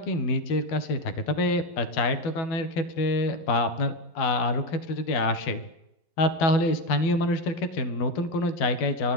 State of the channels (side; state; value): right; late; 12 ms